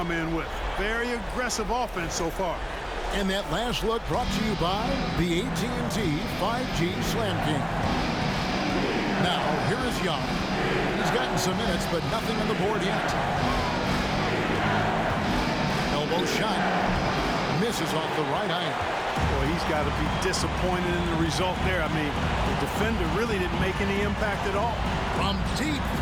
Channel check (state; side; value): identical; both; correlation 1.00